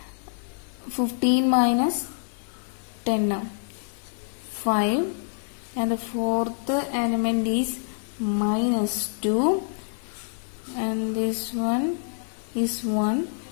15 minus 10 5, and the fourth element is minus 2 and this one is 1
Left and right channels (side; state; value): right; silent; digital silence